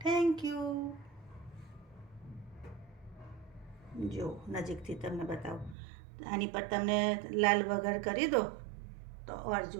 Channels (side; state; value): left; drops out; at 5.8 s